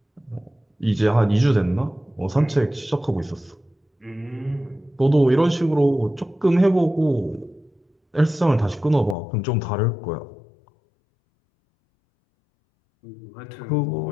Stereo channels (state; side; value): drops out; right; at 9.2 s